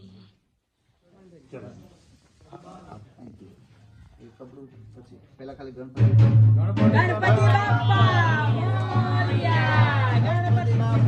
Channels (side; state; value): both; identical; correlation 1.00